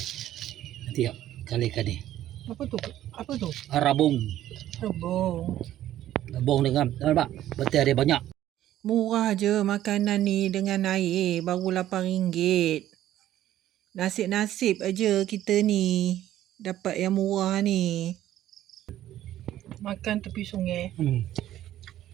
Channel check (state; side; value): quieter; left; 12.9 dB